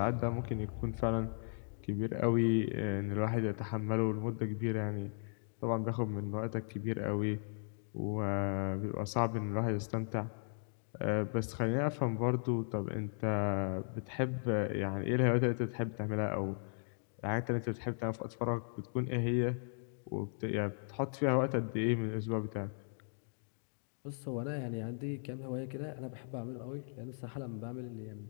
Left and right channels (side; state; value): right; silent; digital silence